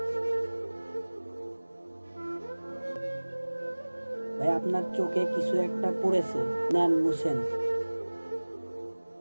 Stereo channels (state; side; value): inverted; both; correlation -1.00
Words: ভাই আপনার চোখে কিছু একটা পড়েছে, নেন মুছেন।